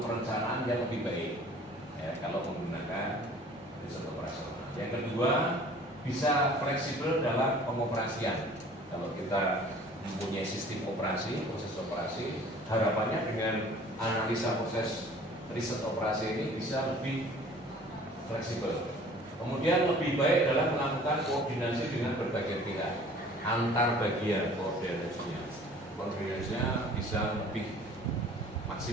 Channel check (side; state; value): both; normal; correlation 0.49